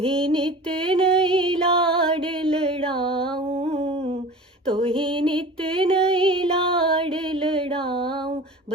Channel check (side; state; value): both; normal; correlation 0.38